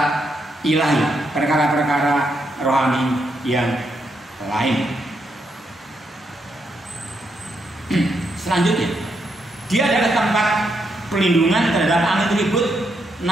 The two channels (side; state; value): both; normal; correlation 0.79